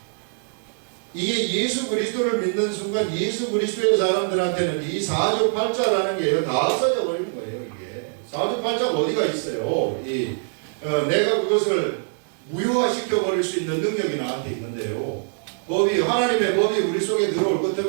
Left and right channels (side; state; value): left; silent; digital silence